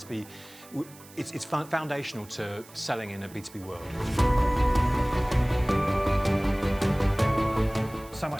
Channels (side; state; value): right; noise; hiss, 22 dB below the sound